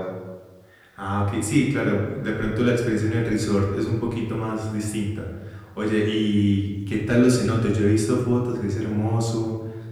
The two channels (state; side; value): identical; both; correlation 1.00